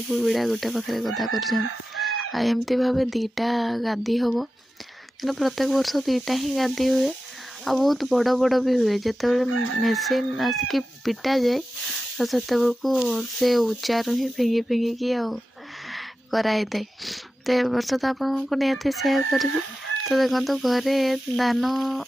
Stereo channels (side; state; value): both; normal; correlation 0.93